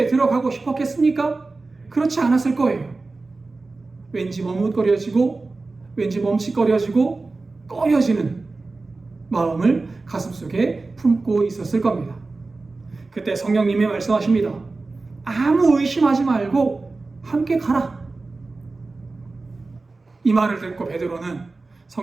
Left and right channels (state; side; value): quieter; left; 3.6 dB